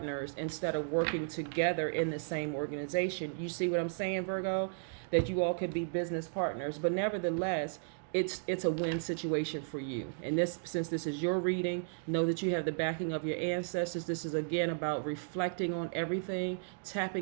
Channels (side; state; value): left; silent; digital silence